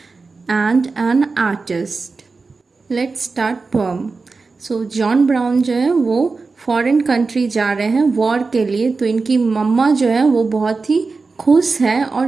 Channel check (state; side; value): quieter; left; 4.2 dB